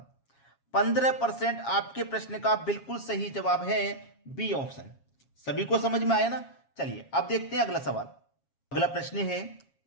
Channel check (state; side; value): late; right; 7.3 ms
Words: 15% आपके प्रश्न का बिल्कुल सही जवाब है बी ऑप्शन। सभी को समझ में आया ना। चलिए अब देखते हैं अगला सवाल। अगला प्रश्न है,